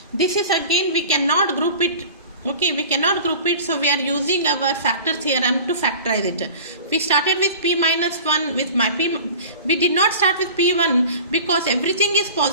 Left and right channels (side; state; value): both; inverted; correlation -0.39